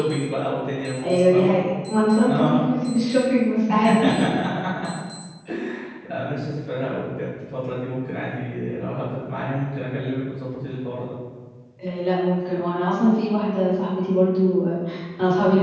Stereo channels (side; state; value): both; identical; correlation 1.00